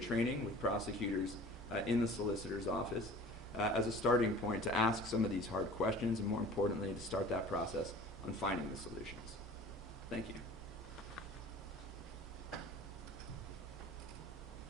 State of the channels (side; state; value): both; normal; correlation 0.43